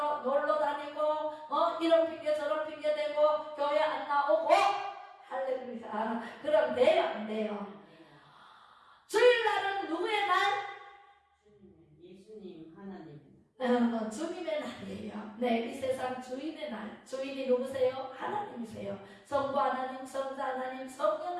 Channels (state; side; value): identical; both; correlation 1.00